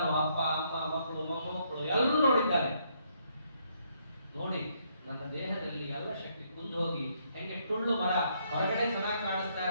ಅಪ್ಪ ಅಮ್ಮ ಮಕ್ಕಳು ಮೊಮ್ಮಕ್ಕಳು ಎಲ್ಲರೂ ನೋಡಿದ್ದಾರೆ. ನೋಡಿ ನನ್ನ ದೇಹದಲ್ಲಿ ಎಲ್ಲ ಶಕ್ತಿ ಕುಂದು ಹೋಗಿ ಹೆಂಗೆ ಟುಳ್ಳು ಮರ ಹೊರಗಡೆ ಚೆನ್ನಾಗಿ ಕಾಣಿಸ್ತಾ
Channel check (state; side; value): inverted; both; correlation -0.72